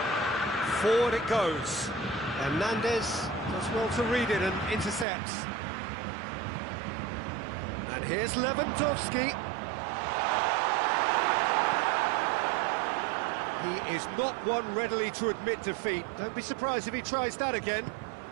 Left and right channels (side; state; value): left; drops out; at 5.1 s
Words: Forward it goes. Hernandez does well to read it and intercepts. And here's Lewandowski. is not one readily to admit defeat. Don't be surprised if he tries that again.